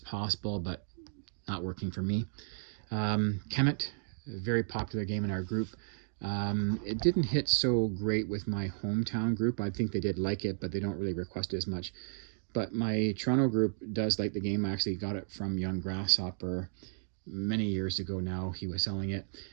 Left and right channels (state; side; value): silent; left; digital silence